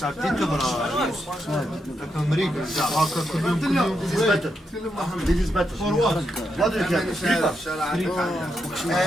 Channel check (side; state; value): both; normal; correlation 0.82